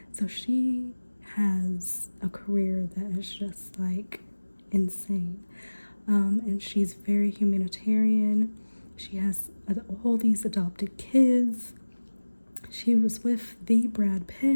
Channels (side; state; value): both; inverted; correlation -1.00